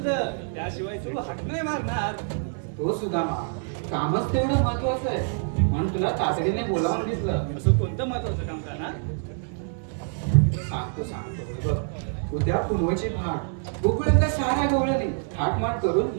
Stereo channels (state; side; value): silent; left; 61 dB below the other